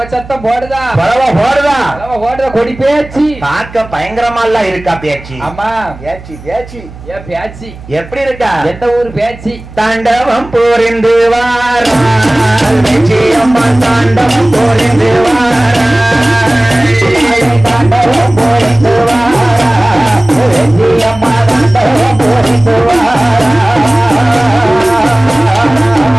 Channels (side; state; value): right; noise; hum, 17 dB below the sound